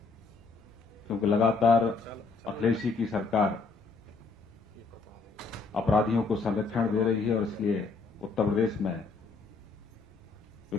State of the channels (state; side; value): quieter; right; 4.3 dB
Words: क्योंकि लगातार अखिलेश जी की सरकार अपराधियों को संरक्षण दे रही है और इसलिए उत्तर प्रदेश में